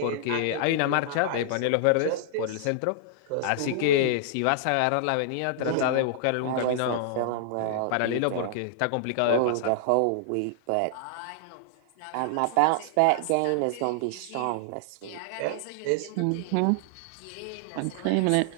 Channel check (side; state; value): both; different; correlation -0.01